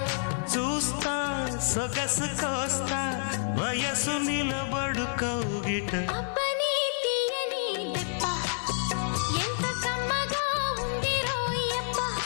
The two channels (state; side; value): silent; right; 59 dB below the other